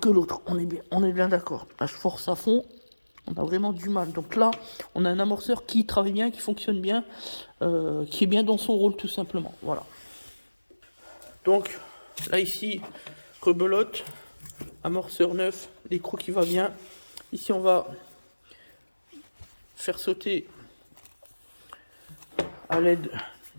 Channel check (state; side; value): inverted; both; correlation -1.00